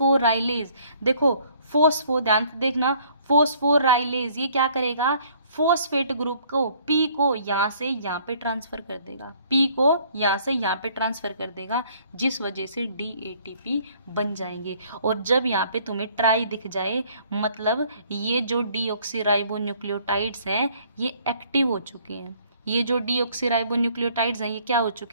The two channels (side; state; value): both; inverted; correlation -0.60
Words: देखो ध्यान से देखना, फोस्फोराइलेज ये क्या करेगा, फॉस्फेट ग्रुप को पी को यहाँ से यहाँ पे ट्रांसफर कर देगा, पी को यहाँ से यहाँ पे ट्रांसफर कर देगा, जिस वजह से DATP बन जाएंगे। और जब यहाँ पे तुम्हें ट्राई दिख जाए, मतलब ये जो डीऑक्सीराइबोन्यूक्लियोटाइड्स हैं ये एक्टिव हो चुके हैं। ये जो डीऑक्सीराइबोन्यूक्लियोटाइड्स हैं ये क्या हो